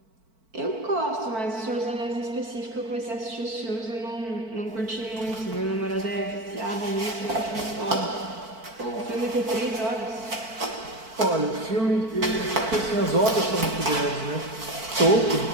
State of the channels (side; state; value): left; late; 4.5 ms